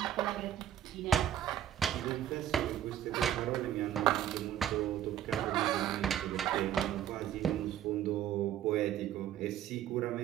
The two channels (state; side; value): quieter; left; 11.0 dB